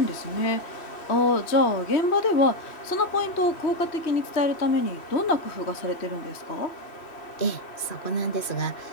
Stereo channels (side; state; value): right; late; 2.5 ms